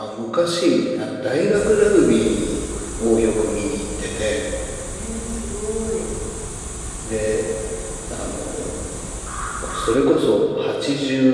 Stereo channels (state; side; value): identical; both; correlation 1.00